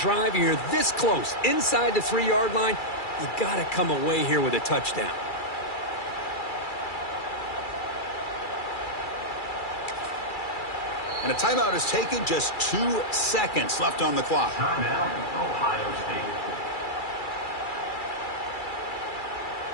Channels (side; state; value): right; late; 2.3 ms